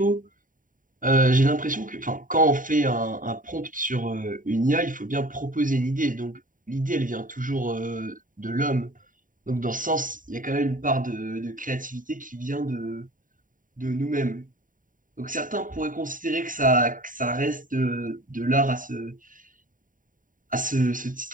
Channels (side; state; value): left; late; 0.39 ms